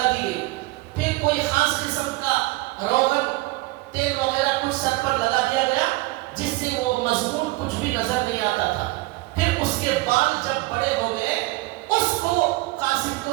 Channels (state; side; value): quieter; left; 20.9 dB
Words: دی گئی. پھر کوئی خاص قسم کا روغن تیل وغیرہ کچھ سر پر لگا دیا گیا جس سے وہ مضمون کچھ بھی نظر نہیں آتا تھا. پھر اس کے بال جب بڑے ہو گئے اس کو قاصد کو